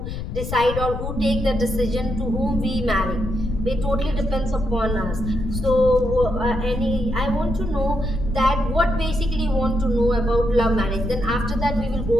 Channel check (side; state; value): left; noise; rumble, 5 dB below the sound